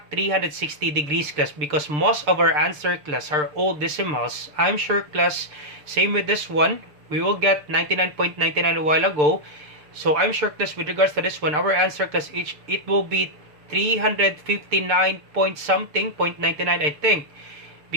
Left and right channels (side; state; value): left; late; 6.7 ms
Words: 360 degrees, class, because most of our answer, class, are all decimals. I'm sure, class, same with this one, we will get 99.99 a while ago. So I'm sure, class, with regards to this one, our answer, class, it will be 359 point something, 0.99, I think,